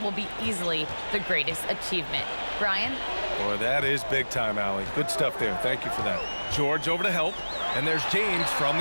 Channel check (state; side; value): inverted; both; correlation -1.00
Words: be easily the greatest achievement." Brian? Boy, that is big time, Allie. Good stuff there. Thank you for that. George over to help. And there's James from